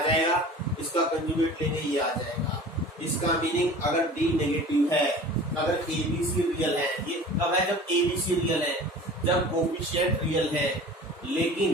इसका कंजुगेट लेंगे ये आ जाएगा। इसका मीनिंग अगर D नेगेटिव है, अगर ABC रियल है, ये कब है, जब ABC रियल है, जब कोफिशिएंट रियल है।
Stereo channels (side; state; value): both; normal; correlation 0.41